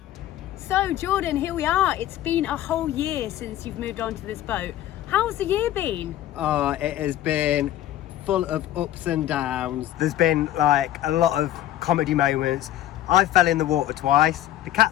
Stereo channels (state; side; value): quieter; right; 13.0 dB